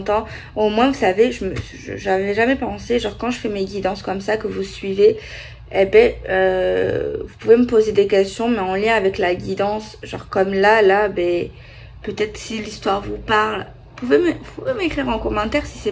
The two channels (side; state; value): both; identical; correlation 1.00